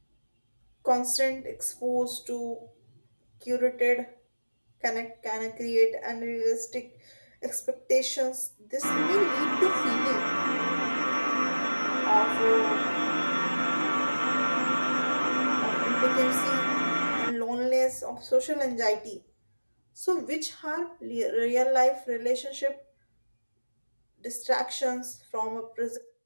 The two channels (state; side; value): inverted; both; correlation -1.00